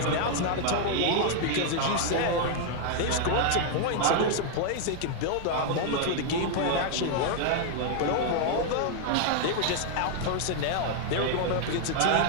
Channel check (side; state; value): both; different; correlation 0.00